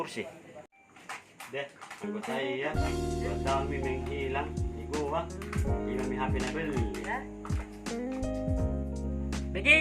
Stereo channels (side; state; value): both; identical; correlation 1.00